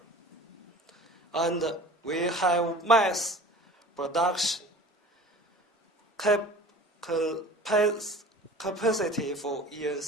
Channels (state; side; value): normal; both; correlation 0.42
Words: And we have mass production capacity for